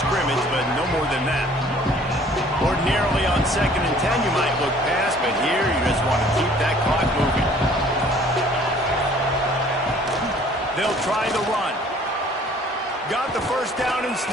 scrimmage, but no more than that. Ordinarily on 2nd and 10, you might look past, but here you just want to keep that clock moving. They'll try the run. Got the first down and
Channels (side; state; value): both; normal; correlation 0.54